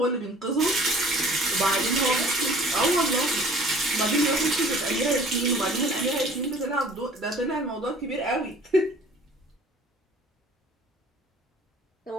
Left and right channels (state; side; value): normal; both; correlation 0.50